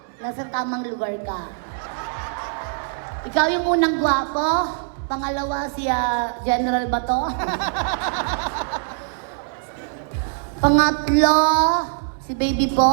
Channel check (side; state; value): left; silent; digital silence